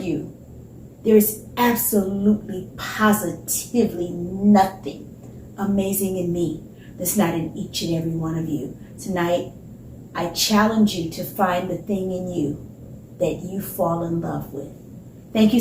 there is absolutely, positively nothing amazing in me that's not in each and every one of you. Tonight, I challenge you to find the thing in you that you fall in love with. Thank you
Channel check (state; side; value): identical; both; correlation 1.00